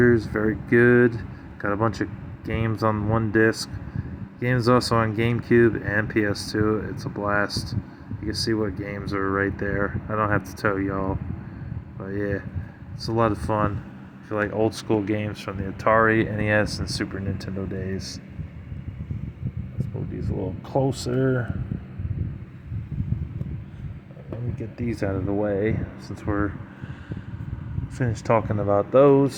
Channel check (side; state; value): both; identical; correlation 1.00